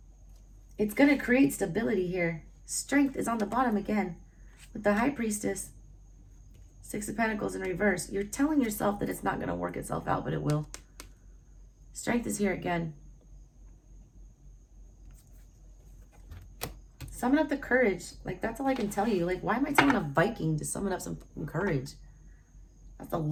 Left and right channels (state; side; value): identical; both; correlation 1.00